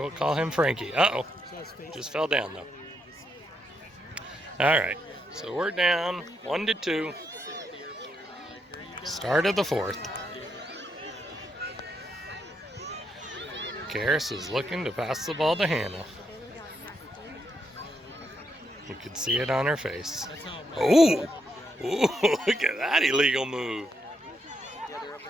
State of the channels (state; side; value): normal; both; correlation 0.80